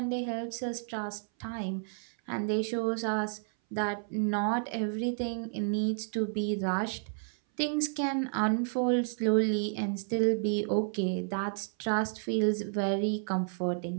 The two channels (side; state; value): left; silent; 57 dB below the other